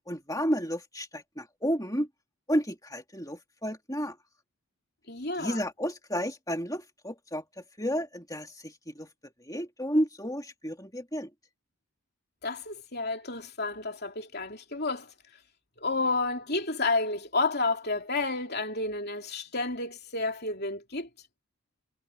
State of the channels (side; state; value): both; normal; correlation 0.14